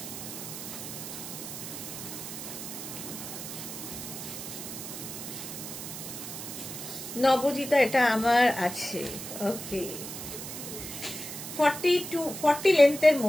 নবজিতা, এটা আমার আছে। ওকে, 40 লেন্থের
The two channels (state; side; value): noise; right; hiss, 8 dB below the sound